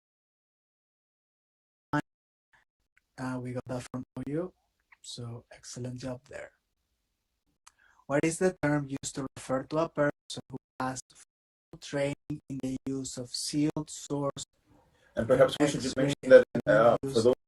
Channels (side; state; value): both; identical; correlation 1.00